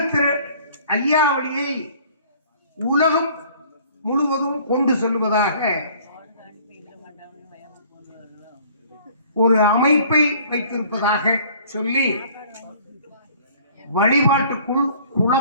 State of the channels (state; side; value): inverted; both; correlation -0.53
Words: ஐயாவளியை உலகம் முழுவதும் கொண்டு செல்வதாக ஒரு அமைப்பை வைத்திருப்பதாக சொல்லி வழிபாட்டுக்குள்